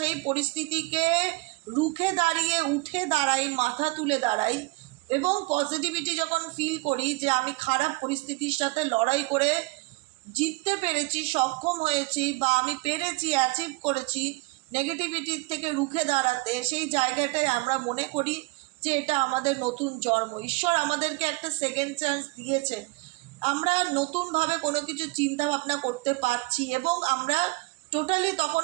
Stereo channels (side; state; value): left; quieter; 25.6 dB